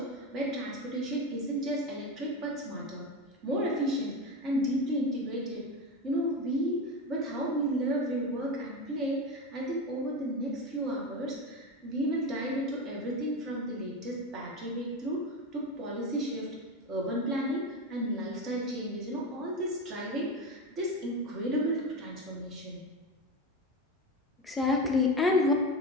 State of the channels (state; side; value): normal; both; correlation 0.20